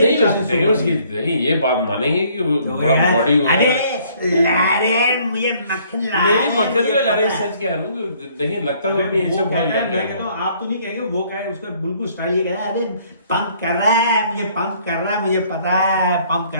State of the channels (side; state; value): both; inverted; correlation -0.62